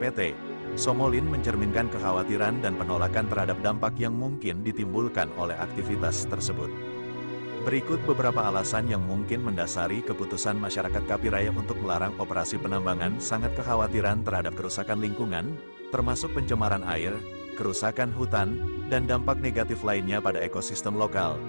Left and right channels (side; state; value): both; inverted; correlation -1.00